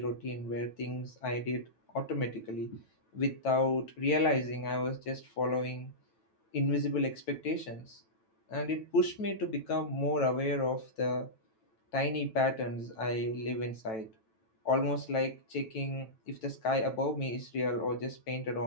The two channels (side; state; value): right; late; 9.1 ms